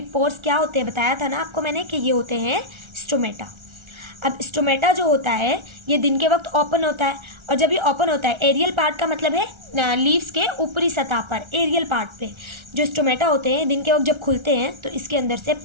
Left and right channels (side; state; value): left; late; 1.3 ms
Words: पोर्स क्या होते हैं, बताया था ना आपको मैंने कि ये होते हैं स्टोमेटा। अब स्टोमेटा जो होता है ये दिन के वक्त ओपन होता है, और जब ये ओपन होता है, एरियल पार्ट का मतलब है लीव्स के ऊपरी सतह पर, एरियल पार्ट पे जो स्टोमेटा होते हैं दिन के वक्त जब खुलते हैं तो इसके अंदर से